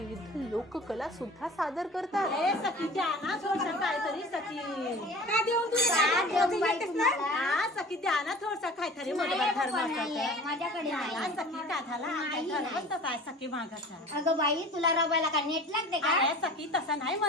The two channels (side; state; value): both; normal; correlation 0.40